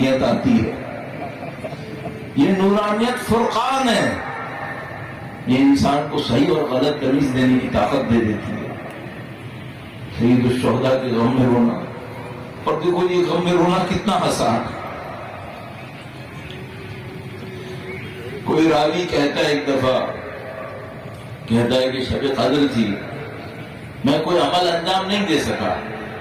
آتی ہے۔ یہ نورانیت فرقان ہے، یہ انسان کو صحیح اور غلط تمیز دینے کی طاقت دے دیتی ہے۔ سید الشہداء کے غم میں رونا، اور دیکھو یہ غم میں رونا کتنا آسان ہے۔ کوئی راوی کہتا ہے ایک دفعہ، کہتا ہے کہ شب قدر تھی، میں کوئی عمل انجام نہیں دے سکا،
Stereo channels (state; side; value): identical; both; correlation 1.00